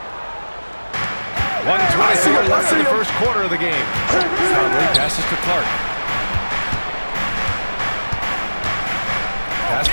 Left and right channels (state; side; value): inverted; both; correlation -1.00